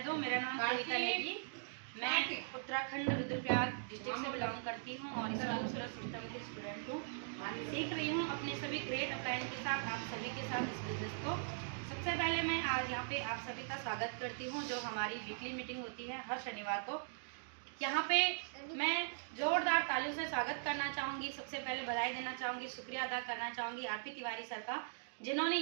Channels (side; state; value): left; silent; digital silence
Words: दूं। मेरा नाम कविता नेगी। मैं उत्तराखंड रुद्रप्रयाग डिस्ट्रिक्ट से बिलोंग करती हूं और इस्लामिक सिस्टम की स्टूडेंट हूं। सीख रही हूं अपने सभी ग्रेट अपलाइन के साथ, आप सभी के साथ इस बिजनेस को। सबसे पहले मैं आज यहाँ पे आप सभी का स्वागत करती हूँ, जो हमारी वीकली मीटिंग होती है हर शनिवार को। यहाँ पे मैं जोरदार तालियों से स्वागत करना चाहूँगी। सबसे पहले बधाई देना चाहूँगी, शुक्रिया अदा करना चाहूँगी आरपी तिवारी सर का, जिन्होंने